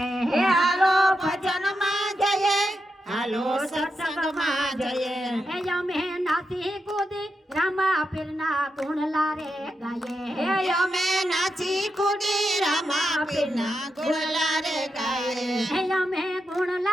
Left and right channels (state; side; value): normal; both; correlation 0.86